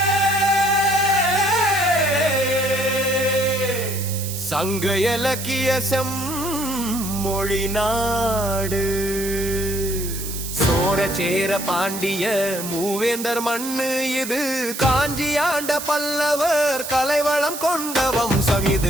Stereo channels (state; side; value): noise; right; hiss, 8 dB below the sound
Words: சங்க இலக்கிய செம்மொழி நாடு. சோரசேர பாண்டிய மூவேந்தர் மண்ணு இது. காஞ்சி ஆண்ட பல்லவர் கலைவளம் கொண்ட வம்சம்